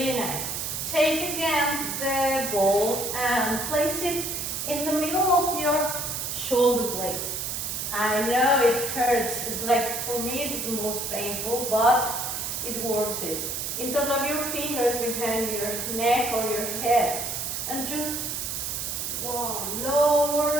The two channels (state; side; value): noise; right; hiss, 3 dB below the sound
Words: nice. Take again the ball and place it in the middle of your shoulder blades. I know it hurts. It's like, for me, it's the most painful, but it's worth it. Interlock your fingers behind your neck or your head and just